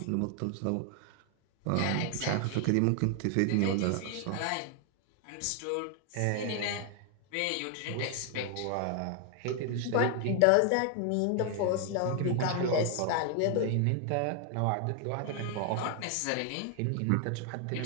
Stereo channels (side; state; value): both; different; correlation 0.00